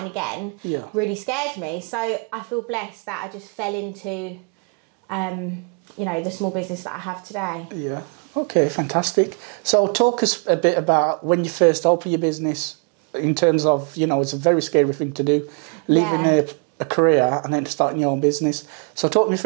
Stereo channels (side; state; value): left; quieter; 37.5 dB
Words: again really scared me. So I feel blessed that I just fell into, you know, the small business that I have today. Yeah. Okay, fantastic. So talk us a bit about when you first opened your business, in terms of, you know, it's a very scary thing to do, leaving a career and then starting your own business. So talk me